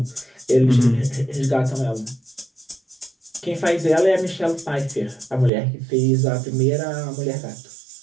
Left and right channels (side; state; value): left; drops out; at 5.5 s